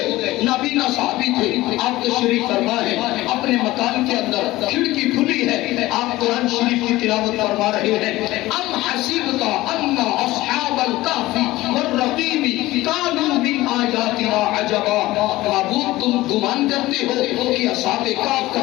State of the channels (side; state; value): right; quieter; 17.8 dB